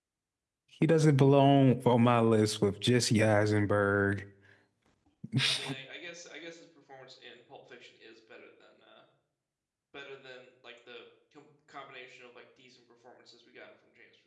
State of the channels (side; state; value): both; identical; correlation 1.00